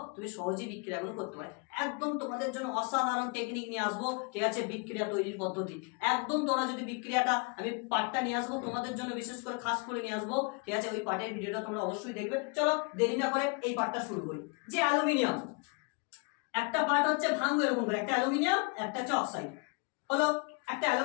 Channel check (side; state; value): right; quieter; 33.4 dB